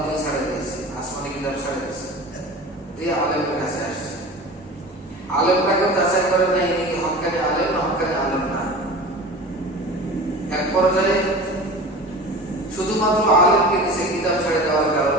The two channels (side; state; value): both; normal; correlation 0.36